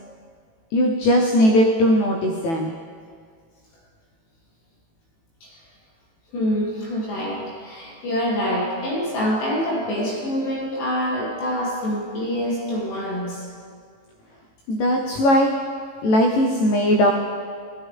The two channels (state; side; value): late; right; 18 ms